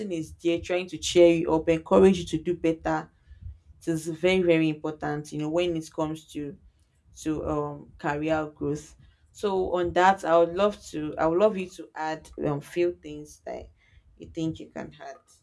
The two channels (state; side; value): identical; both; correlation 1.00